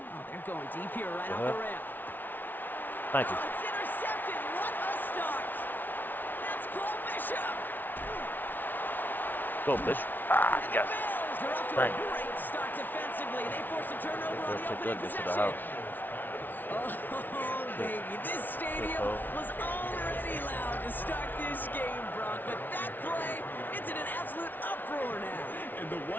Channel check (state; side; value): late; right; 0.088 ms